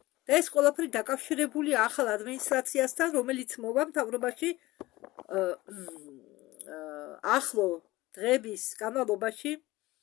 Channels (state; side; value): quieter; right; 19.0 dB